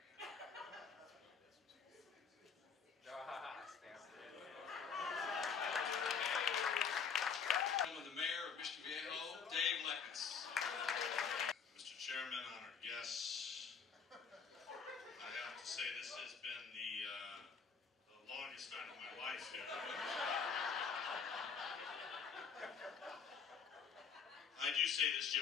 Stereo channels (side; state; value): right; quieter; 6.3 dB